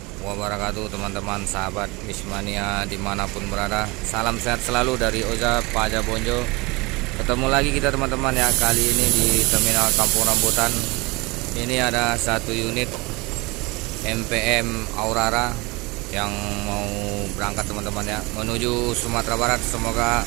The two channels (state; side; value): quieter; left; 24.8 dB